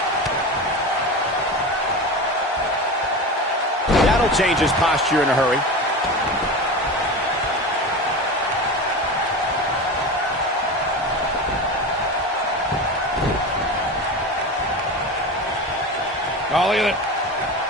That'll change his posture in a hurry. Oh, look at it.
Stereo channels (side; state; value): both; normal; correlation 0.27